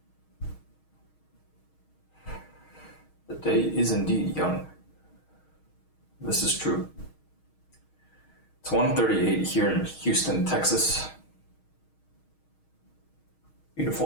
The day is indeed young. This is true. It's 1:38 here in Houston, Texas.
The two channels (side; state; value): right; late; 6.4 ms